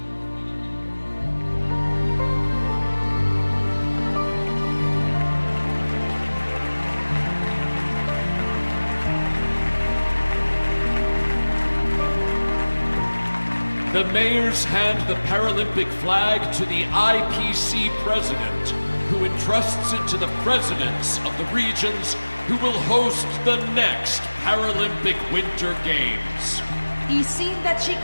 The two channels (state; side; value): inverted; both; correlation -1.00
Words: The mayors hand the Paralympic flag to the IPC president, who entrusts it to the presidents of the regions who will host the next Paralympic Winter Games. I sindaci